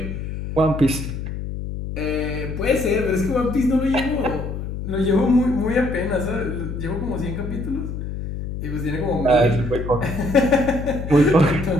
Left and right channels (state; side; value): noise; left; hum, 6 dB below the sound